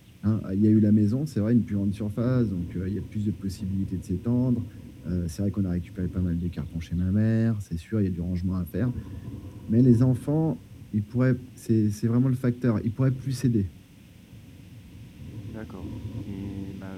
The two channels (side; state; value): both; identical; correlation 1.00